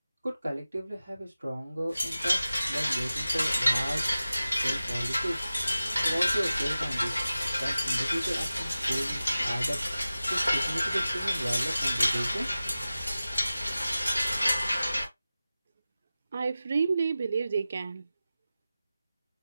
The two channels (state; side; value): inverted; both; correlation -0.95